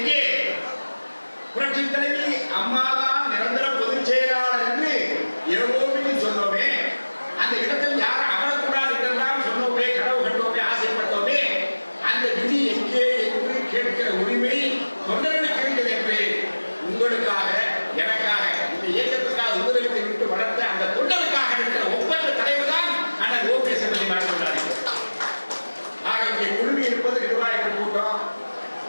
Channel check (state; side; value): inverted; both; correlation -1.00